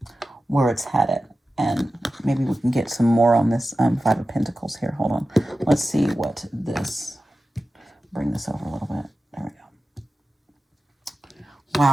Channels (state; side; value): normal; both; correlation 0.94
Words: where it's headed. And maybe we can get some more on this 5 of Pentacles here. Hold on. Let's see what this, bring this over a little bit. There we go.